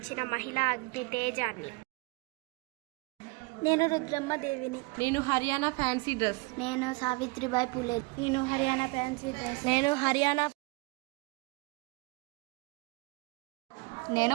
మహిళా అగ్ని తేజాన్ని. నేను రుద్రమ్మ దేవిని. నేను హర్యానా ఫ్యాన్సీ డ్రెస్. నేను సావిత్రిబాయి పులే. నేను హర్యానా ఫ్యాన్సీ డ్రెస్. నేను హర్యానా.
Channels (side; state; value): left; quieter; 26.7 dB